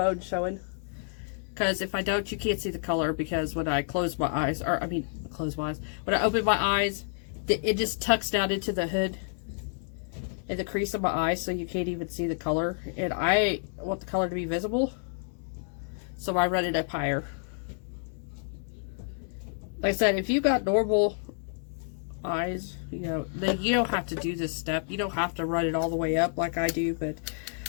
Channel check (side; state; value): right; silent; digital silence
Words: showing. Because if I don't, you can't see the color, because when I close my eyes, or I mean, close my eyes, when I open my eyes, it just tucks down into the hood in the crease of my eye, so you can't even see the color. And I want the color to be visible, so I run it up higher. Like I said, if you got normal eyes, you know, then you don't have to do this step. You don't have to run it all the way up like I do, but